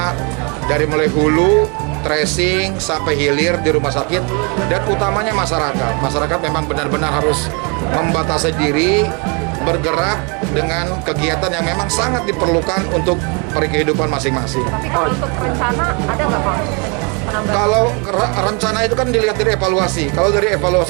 dari mulai hulu, tracing sampai hilir di rumah sakit, dan utamanya masyarakat. Masyarakat memang benar-benar harus membatasi diri, bergerak dengan kegiatan yang memang sangat diperlukan untuk kehidupan masing-masing. Tapi kalau untuk rencana ada nggak Pak? Penambahan? Kalau rencana itu kan dilihat dari evaluasi. Kalau dari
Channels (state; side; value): quieter; left; 33.1 dB